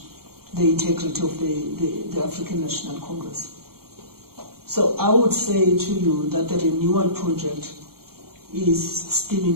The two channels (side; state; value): left; late; 0.94 ms